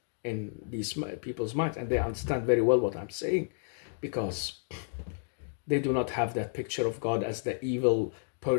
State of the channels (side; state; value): right; silent; digital silence